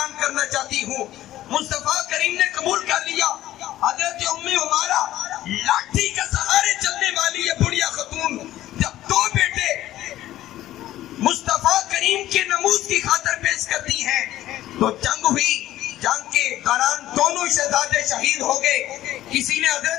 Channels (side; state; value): right; quieter; 14.1 dB